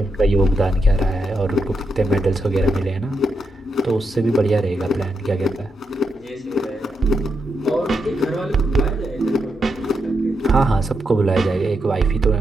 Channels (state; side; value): normal; both; correlation 0.83